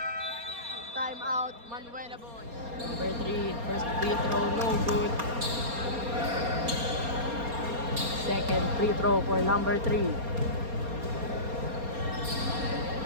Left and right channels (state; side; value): late; left; 4.3 ms